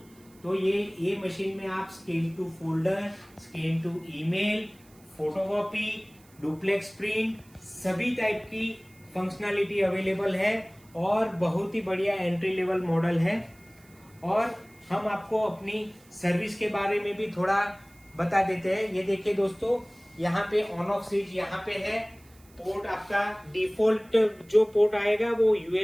तो ये मशीन में आप scan to folder, scan to email, photocopy, duplex print, सभी टाइप की फंक्शनलिटी अवेलेबल है और बहुत ही बढ़िया एंट्री लेवल मॉडल है। और हम आपको अपनी सर्विस के बारे में भी थोड़ा बता देते हैं। ये देखिए दोस्तों, यहाँ पे ऑन ऑफ स्विच यहाँ पे है। पोर्ट आपका डिफॉल्ट जो पोर्ट आएगा वो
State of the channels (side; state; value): right; noise; hiss, 28 dB below the sound